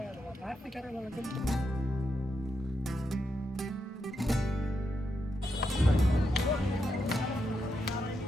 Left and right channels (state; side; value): normal; both; correlation 0.83